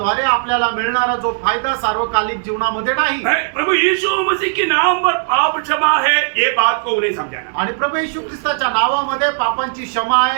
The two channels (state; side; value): silent; left; 68 dB below the other